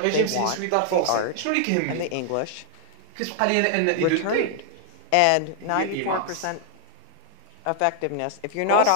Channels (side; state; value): both; different; correlation 0.00